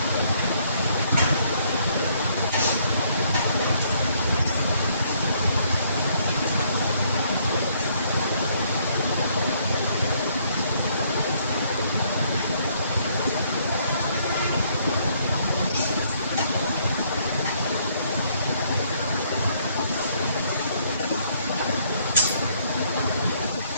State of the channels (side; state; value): both; inverted; correlation -0.68